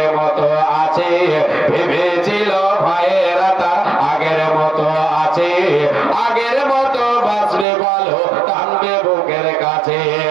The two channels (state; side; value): drops out; left; at 7.7 s